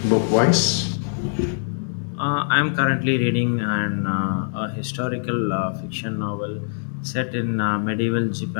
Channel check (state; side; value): silent; right; digital silence